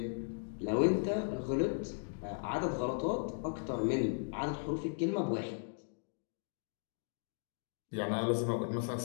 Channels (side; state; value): right; silent; digital silence